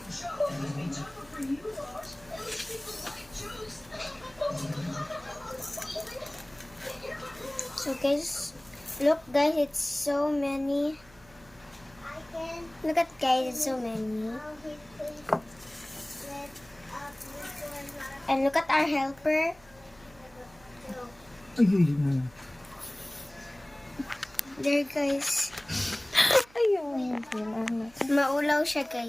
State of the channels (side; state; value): right; noise; hum, 26 dB below the sound